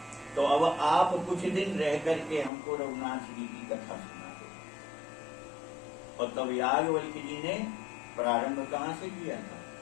तो अब आप कुछ दिन रह करके हमको रघुनाथ जी की कथा सुना दो। और तब याज्ञवल्क्य जी ने प्रारंभ कहाँ से किया था?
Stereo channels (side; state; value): right; drops out; at 2.5 s